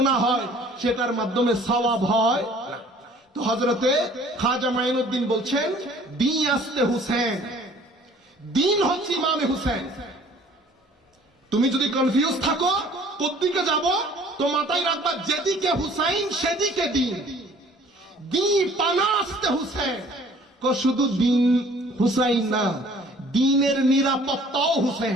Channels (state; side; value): normal; both; correlation 0.53